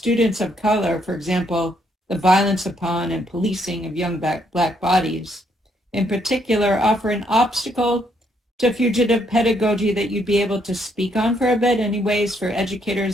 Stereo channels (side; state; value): both; normal; correlation 0.72